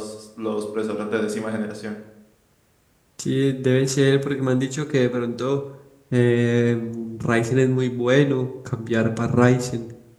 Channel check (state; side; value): identical; both; correlation 1.00